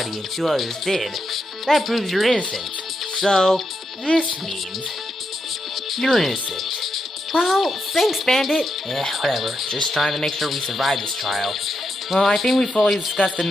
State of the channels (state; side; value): normal; both; correlation 0.83